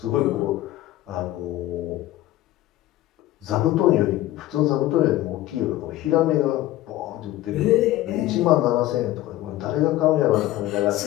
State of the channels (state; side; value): quieter; right; 15.4 dB